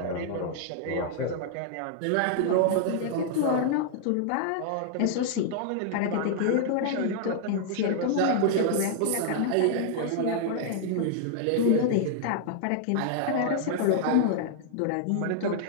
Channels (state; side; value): different; both; correlation -0.01